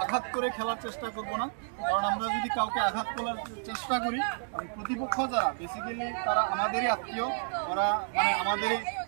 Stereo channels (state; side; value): silent; left; digital silence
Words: আঘাত করে খেলার চেষ্টা করব না। কারণ আমরা যদি কাউকে আঘাত করার চেষ্টা করি এবং প্রতিপক্ষ যারা বেসিক্যালি তারা আমাদেরই আত্মীয়, ওরা মানে আমাদেরই